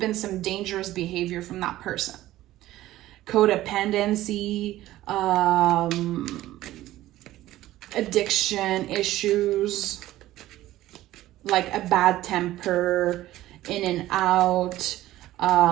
some dangerous behavior from that person. Codependency, addiction issues, like a bad temper, in and out,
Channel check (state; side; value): quieter; left; 15.2 dB